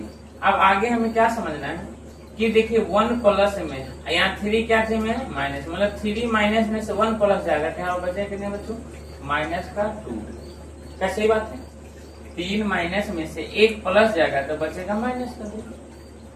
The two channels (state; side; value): identical; both; correlation 1.00